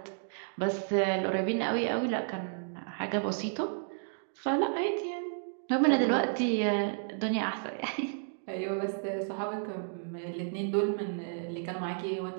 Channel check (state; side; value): silent; left; digital silence